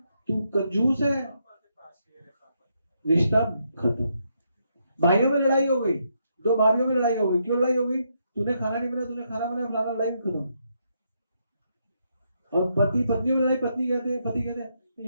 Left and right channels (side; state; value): both; inverted; correlation -0.78